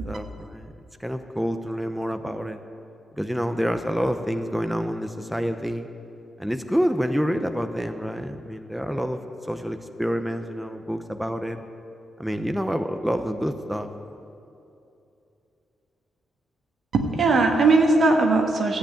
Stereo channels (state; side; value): normal; both; correlation 0.86